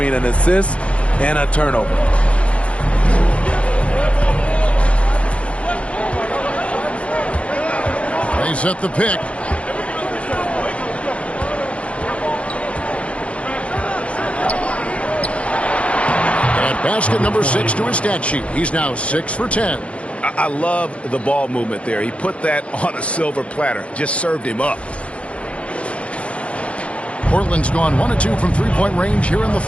an assist and a turnover. They set the pick. And basket number 6 to his stat sheet. He's now 6 for 10. I love the ball movement there. He put that on a silver platter. Just served him up. Portland's gone 1 of 2 from three-point range here in the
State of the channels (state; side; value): late; right; 0.062 ms